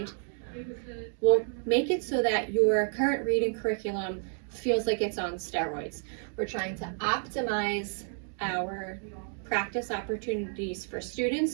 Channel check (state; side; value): silent; left; 56 dB below the other